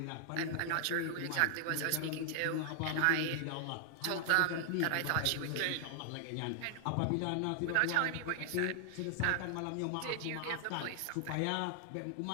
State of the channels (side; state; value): both; different; correlation 0.00